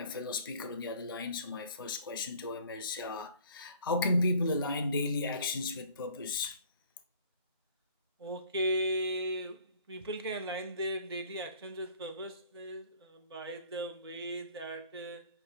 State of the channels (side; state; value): both; inverted; correlation -0.54